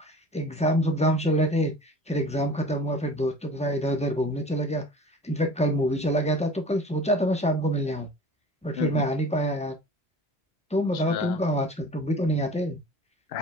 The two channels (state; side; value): normal; both; correlation 0.42